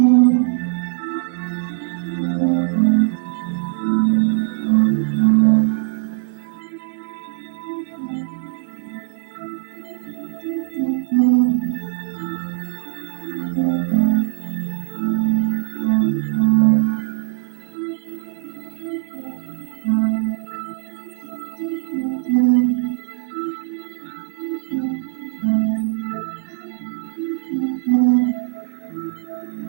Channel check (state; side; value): silent; left; digital silence